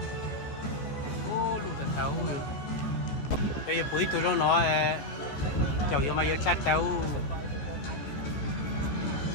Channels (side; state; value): right; late; 14 ms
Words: ô lụt thật tàu cái quý tôi nó chậu vô mà vô chát tàu